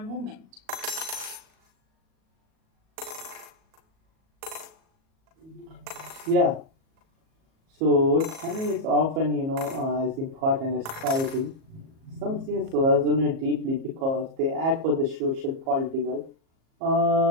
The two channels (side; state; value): left; late; 37 ms